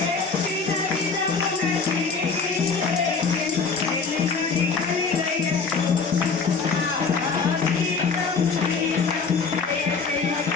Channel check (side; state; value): right; quieter; 4.9 dB